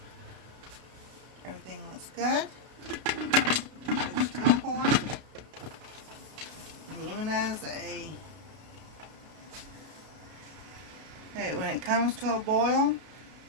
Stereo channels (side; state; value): left; late; 32 ms